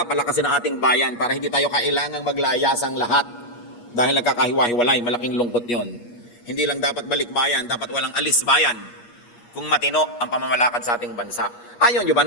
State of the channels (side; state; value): right; late; 8.4 ms